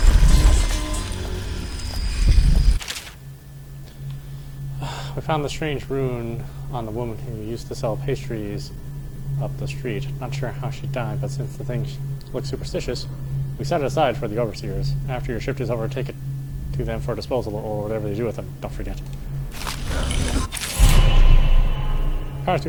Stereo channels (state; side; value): identical; both; correlation 1.00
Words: We found the strange rune on the woman who used to sell pastries up the street. Not sure how she died, but since the thing looks superstitious, we set it aside for the overseers. After your shift is over, take it to them for disposal or whatever they do with them. Don't forget. Powers